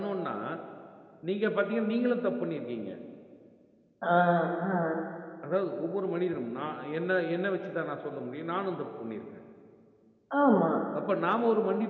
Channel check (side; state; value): both; identical; correlation 1.00